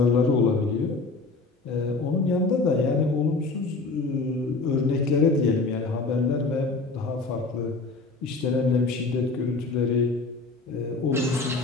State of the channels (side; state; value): right; quieter; 3.7 dB